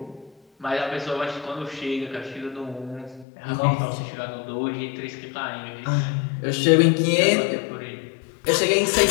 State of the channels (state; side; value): drops out; right; at 3.2 s